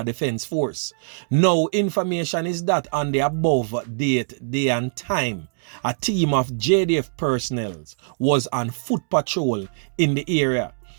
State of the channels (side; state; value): left; silent; digital silence